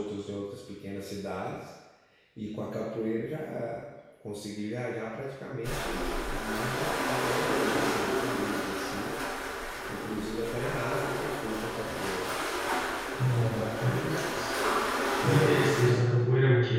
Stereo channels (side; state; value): both; identical; correlation 1.00